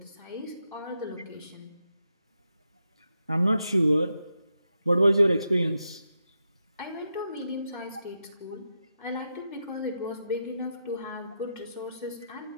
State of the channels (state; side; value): inverted; both; correlation -0.85